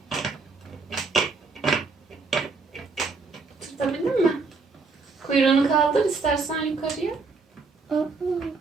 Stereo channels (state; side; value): quieter; left; 4.2 dB